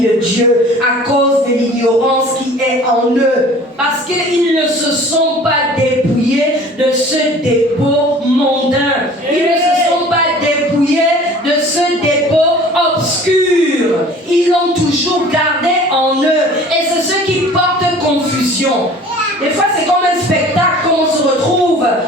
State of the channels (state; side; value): normal; both; correlation 0.47